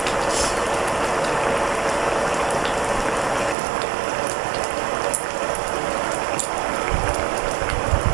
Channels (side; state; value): left; drops out; at 3.6 s